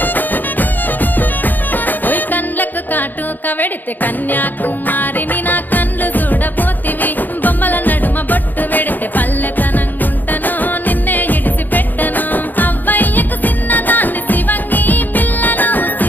ఓయ్ కండ్లకు కాటుక వెడితే కన్యాకుమారిని నా కండ్లు చూడపోతివి బొమ్మల నడుమ బొట్టు వెడితే పల్లెతనంగుంటను నిన్నే ఇడిసి పెట్టను అవ్వయ్యకు చిన్నదాన్ని శివంగి పిల్లను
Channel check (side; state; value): right; late; 0.087 ms